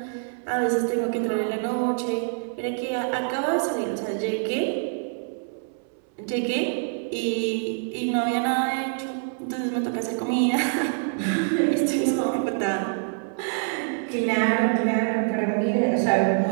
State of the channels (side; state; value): left; silent; 61 dB below the other